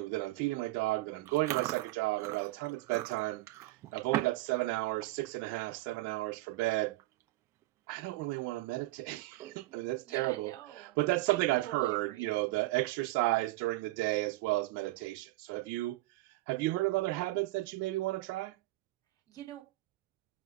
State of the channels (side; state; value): left; quieter; 18.9 dB